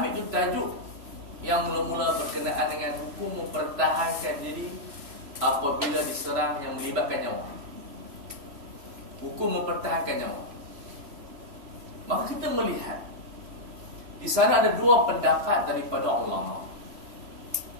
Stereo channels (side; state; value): left; late; 3.0 ms